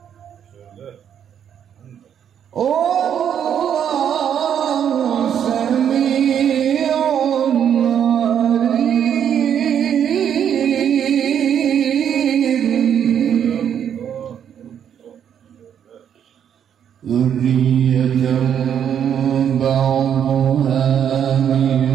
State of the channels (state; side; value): quieter; left; 8.9 dB